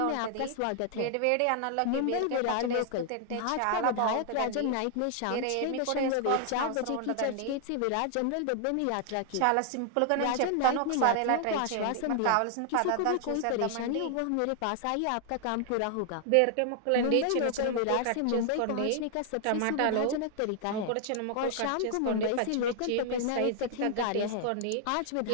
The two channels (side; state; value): both; different; correlation 0.00